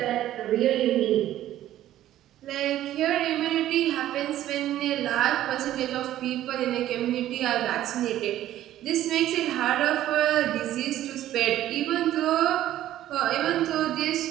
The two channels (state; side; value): quieter; left; 13.1 dB